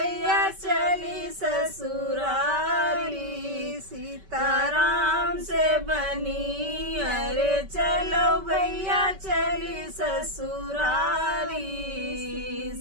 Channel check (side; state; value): left; late; 5.2 ms